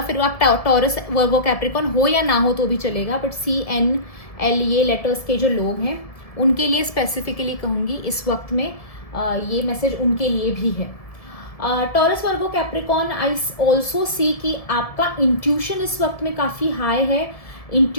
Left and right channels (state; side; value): late; right; 1.7 ms